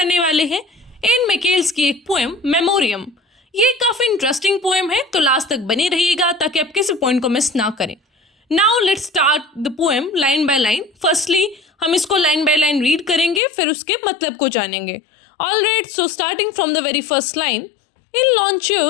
वाले हैं एन मैकेल्स की एक पोएम मेमोरियम। ये काफ़ी इंटरेस्टिंग पोएम है, तो लास्ट तक बने रहिएगा ताकि आप किसी पॉइंट को मिस ना करें। Now let's start the poem line by line. Firstly हम इसको लाइन बाय लाइन रीड करेंगे, फिर उसके मतलब को जानेंगे। Alright, so starting from the very first line. In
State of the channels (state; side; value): drops out; right; at 13.4 s